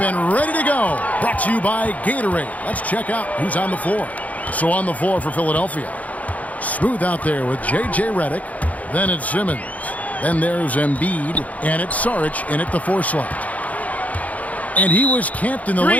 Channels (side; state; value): right; late; 0.072 ms